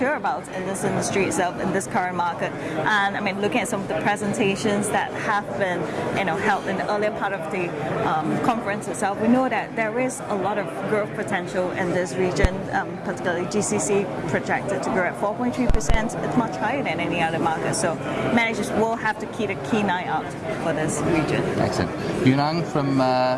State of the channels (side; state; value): both; identical; correlation 1.00